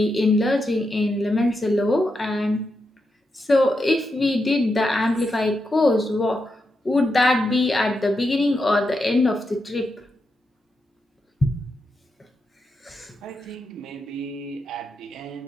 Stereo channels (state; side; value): normal; both; correlation 0.85